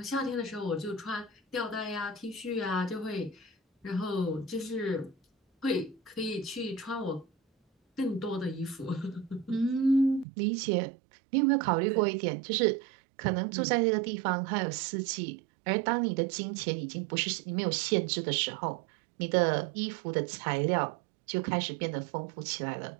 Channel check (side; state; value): left; drops out; at 10.2 s